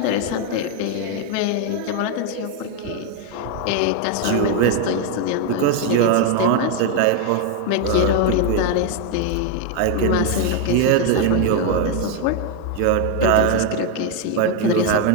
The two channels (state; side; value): different; both; correlation 0.01